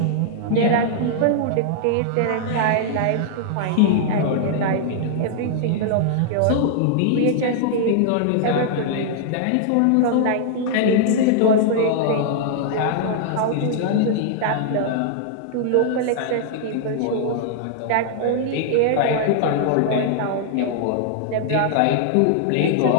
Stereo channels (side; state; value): both; different; correlation -0.01